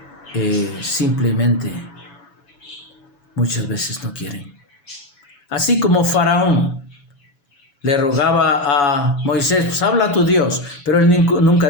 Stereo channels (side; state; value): right; late; 7.1 ms